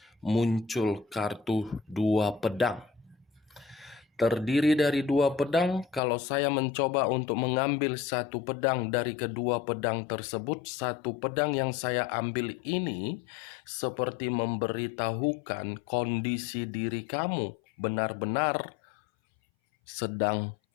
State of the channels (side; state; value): right; drops out; at 6.0 s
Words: Muncul kartu 2 pedang. Terdiri dari 2 pedang. Kalau saya mencoba untuk mengambil satu pedang dari kedua pedang tersebut, satu pedang yang saya ambil ini seperti memberitahukan kondisi diri kamu benar-benar sedang